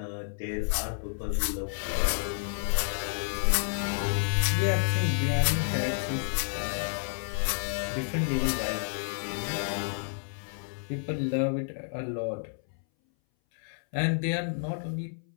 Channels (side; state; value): right; silent; 58 dB below the other